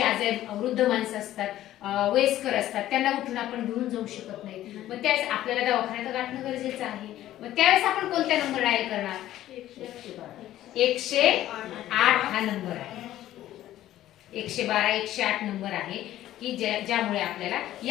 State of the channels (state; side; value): quieter; right; 13.5 dB